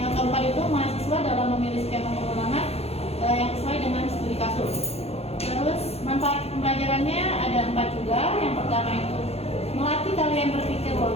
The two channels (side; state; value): right; late; 0.29 ms